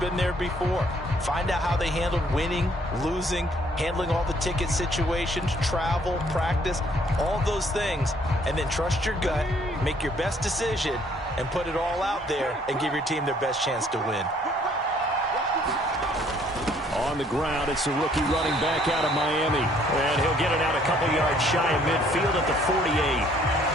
there before. Find out how they handled winning, losing, handling all the ticket situations, travel, practice, all those things, and then trust your gut, make your best decision, and put it all out there and give your team their best chance to win. On the ground, it's the rookie running back out of Miami. And he'll get it out a couple yards shy of midfield at the 48.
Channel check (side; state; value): both; normal; correlation 0.63